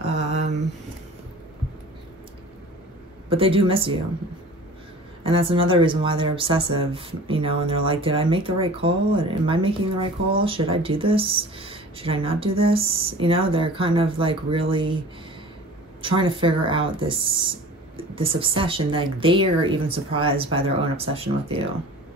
But they do miss you. And that's another reason why they're obsessive, you know, and they're like, did I make the right call? Am I making the right call? Should I do this? Should I not do this? You know, they're kind of like really trying to figure out this obsession. Like, they are even surprised by their own obsession with you.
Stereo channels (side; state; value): both; normal; correlation 0.42